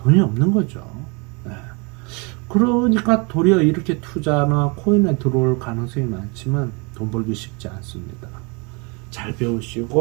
없는 거죠. 네. 그러니까 도리어 이렇게 투자나 코인에 들어올 가능성이 많지만 돈 벌기 쉽지 않습니다. 잘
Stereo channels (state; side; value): quieter; left; 30.7 dB